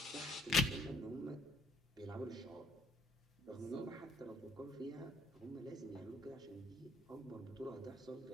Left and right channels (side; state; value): both; normal; correlation 0.63